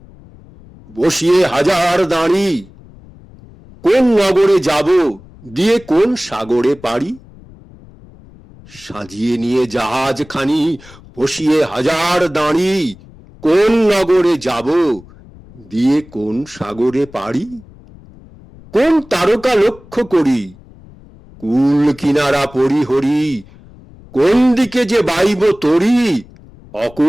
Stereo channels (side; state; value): left; noise; rumble, 23 dB below the sound